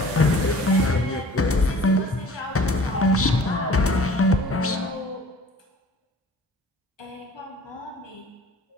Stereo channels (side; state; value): both; normal; correlation 0.48